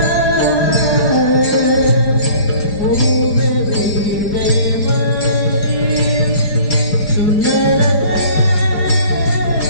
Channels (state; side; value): late; right; 5.0 ms